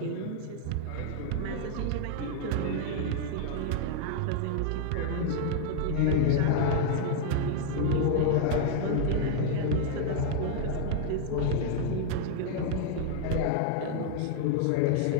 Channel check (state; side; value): different; both; correlation 0.00